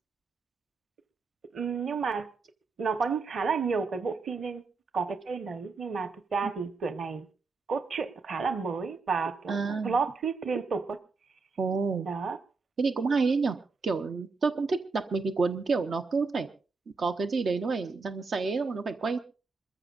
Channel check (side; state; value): left; quieter; 4.4 dB